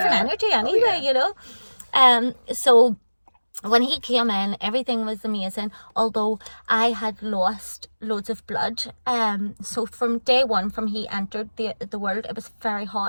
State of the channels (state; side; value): inverted; both; correlation -1.00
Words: energy anyway, you know. So when he came in, everything was amazing. Although I had lost loads of blood. So from day one, from he entered the world, it was very